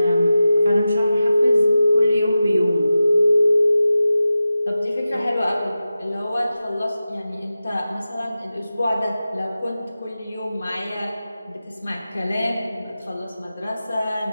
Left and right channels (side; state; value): both; inverted; correlation -0.93